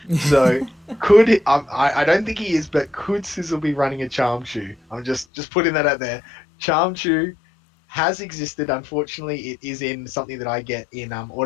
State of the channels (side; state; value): right; drops out; at 5.2 s